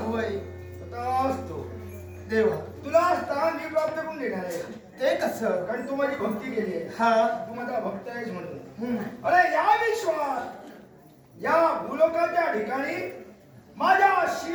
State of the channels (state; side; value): identical; both; correlation 1.00